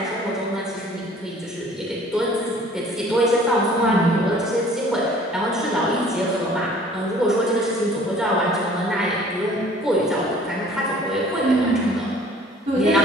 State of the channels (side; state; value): both; normal; correlation 0.52